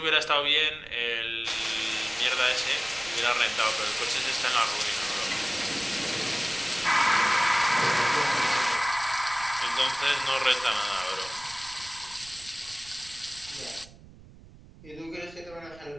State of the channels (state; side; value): noise; right; rumble, 21 dB below the sound